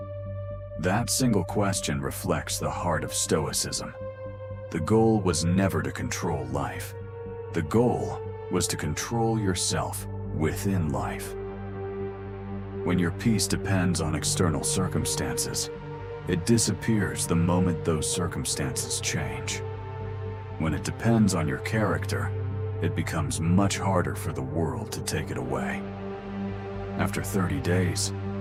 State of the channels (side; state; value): both; identical; correlation 1.00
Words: That single question reflects the heart of Stoicism. The goal was never to control life. The goal was to control yourself within life. When your peace depends on external circumstances, it disappears the moment those circumstances change. When it depends on your character, it becomes much harder for the world to take it away. After 30 days,